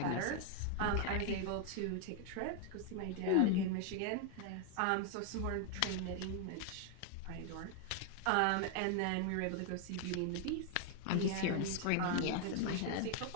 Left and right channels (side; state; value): both; different; correlation 0.00